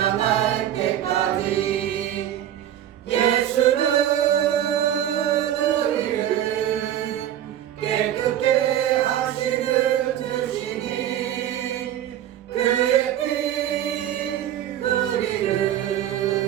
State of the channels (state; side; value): quieter; left; 11.3 dB